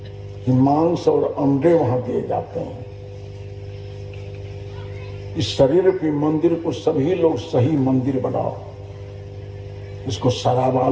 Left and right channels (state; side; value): identical; both; correlation 1.00